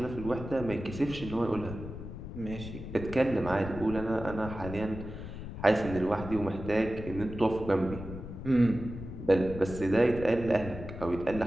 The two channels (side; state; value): left; noise; rumble, 10 dB below the sound